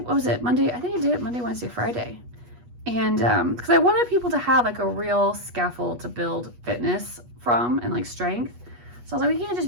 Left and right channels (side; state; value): left; late; 8.3 ms